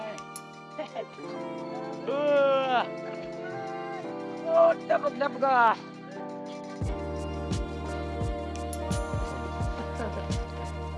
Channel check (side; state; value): both; identical; correlation 1.00